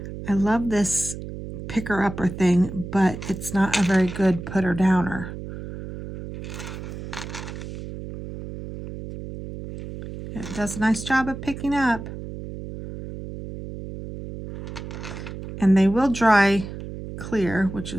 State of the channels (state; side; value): noise; right; hum, 10 dB below the sound